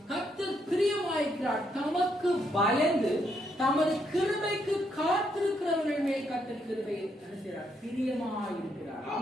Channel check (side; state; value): both; normal; correlation 0.75